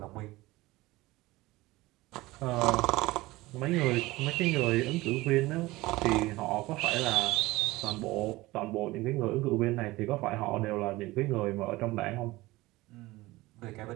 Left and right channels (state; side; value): quieter; left; 19.7 dB